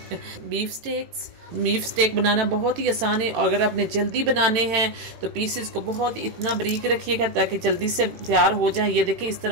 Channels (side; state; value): left; late; 18 ms